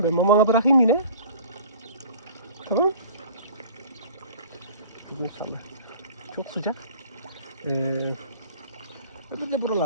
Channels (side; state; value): both; inverted; correlation -0.46